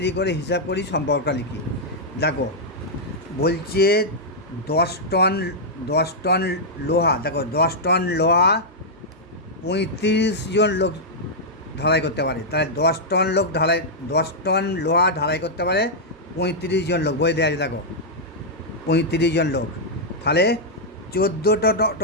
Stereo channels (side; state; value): both; normal; correlation -0.07